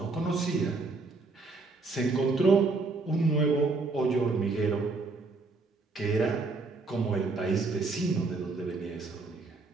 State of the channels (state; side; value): quieter; left; 3.8 dB